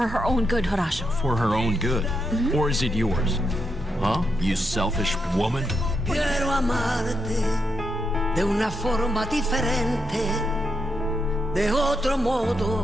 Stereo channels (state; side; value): normal; both; correlation 0.82